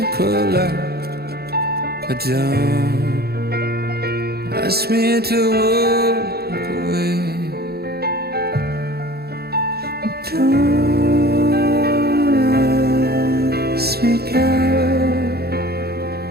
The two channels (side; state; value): left; late; 0.46 ms